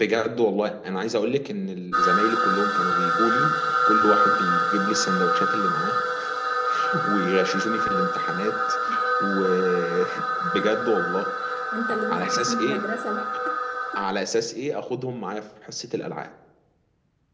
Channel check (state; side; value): identical; both; correlation 1.00